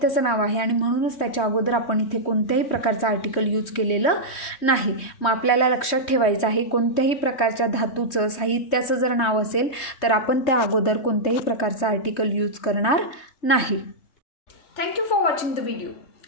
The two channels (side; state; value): right; late; 3.1 ms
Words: नाव आहे आणि म्हणूनच त्याच्या अगोदर आपण इथे कोणत्याही प्रकारचं आर्टिकल यूज केलेलं नाही. मग आपल्याला लक्षात ठेवायचं आहे, कोणत्याही प्रकारच्या धातूचं, साहित्याचं जर नाव असेल तर आपण त्या अगोदर कोणत्याही प्रकारचं आर्टिकल यूज करणार नाही. Thank you for watching the video.